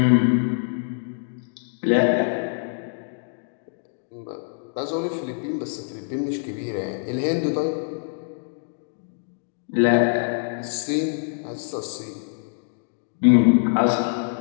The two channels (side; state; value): right; silent; digital silence